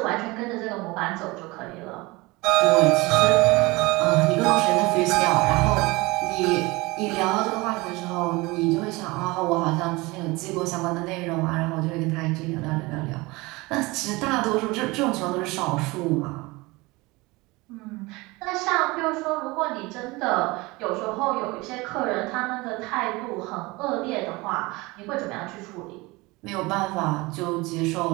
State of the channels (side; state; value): left; quieter; 23.1 dB